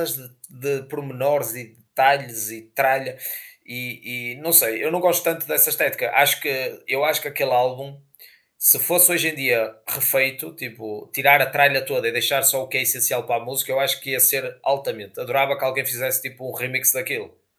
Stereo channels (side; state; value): both; identical; correlation 1.00